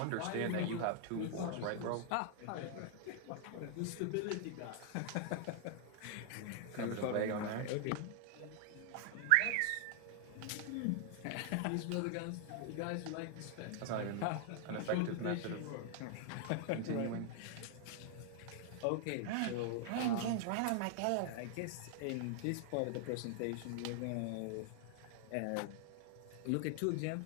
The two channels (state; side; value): different; both; correlation 0.00